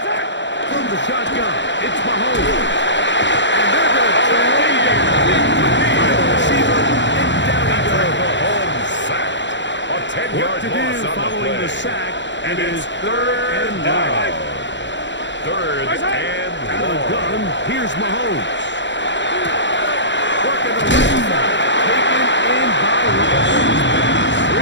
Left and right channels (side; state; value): right; late; 0.53 ms